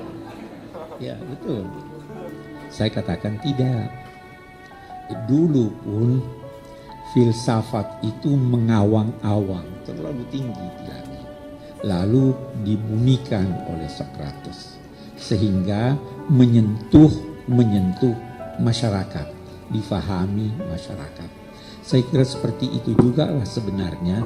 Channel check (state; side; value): identical; both; correlation 1.00